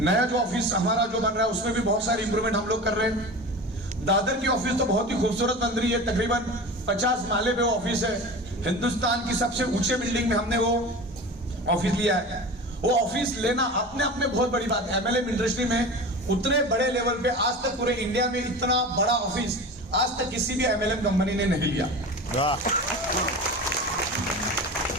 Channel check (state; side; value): normal; both; correlation 0.32